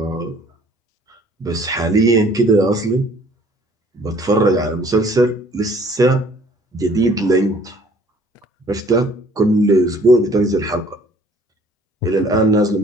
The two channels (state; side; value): normal; both; correlation 0.56